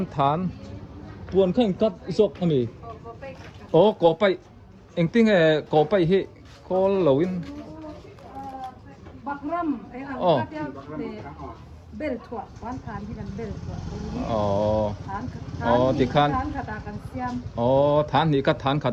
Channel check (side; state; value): both; identical; correlation 1.00